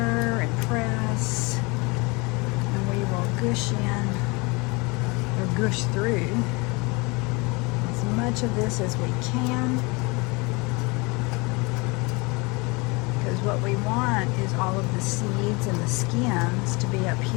and press, and we will gush in or gush through as much of this as we can, because what we want is all of the seeds and the skins to be up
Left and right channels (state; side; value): quieter; right; 27.2 dB